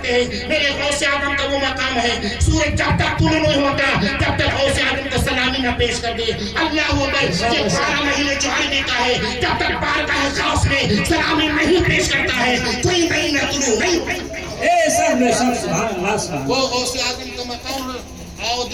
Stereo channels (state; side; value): identical; both; correlation 1.00